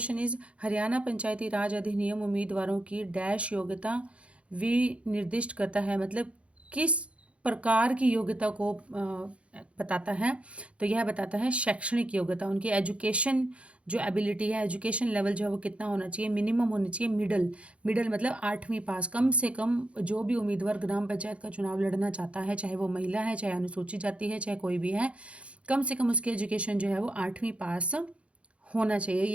इज, हरियाणा पंचायती राज अधिनियम उम्मीदवारों की डैश योग्यता विनिर्दिष्ट करता है, मतलब किस प्रकार की योग्यता को बताता है? तो यह बताता है शैक्षणिक योग्यता, उनकी एजुकेशन जो एबिलिटी है, एजुकेशन लेवल जो है वो कितना होना चाहिए? मिनिमम होनी चाहिए मिडल मतलब 8वीं पास। कम से कम जो भी उम्मीदवार ग्राम पंचायत का चुनाव लड़ना चाहता है, चाहे वो महिला है, चाहे अनुसूचित जाति है, चाहे कोई भी है, कम से कम उसकी एजुकेशन जो है वो 8वीं पास होना चाहिए,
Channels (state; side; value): late; left; 0.061 ms